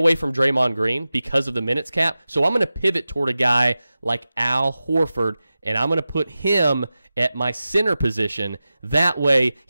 from Draymond Green because of the minutes cap. So I'm going to pivot toward a guy like Al Horford, and I'm going to put him at my center position. That way,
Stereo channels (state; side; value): inverted; both; correlation -0.95